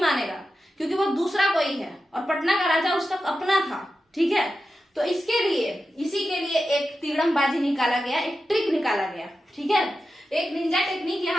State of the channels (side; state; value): both; normal; correlation 0.91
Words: क्योंकि वो दूसरा कोई है और पटना का राजा उसका अपना था, ठीक है। तो इसके लिए, इसी के लिए एक तिगड़मबाजी निकाला गया, एक ट्रिक निकाला गया, ठीक है। एक निंजा टेक्निक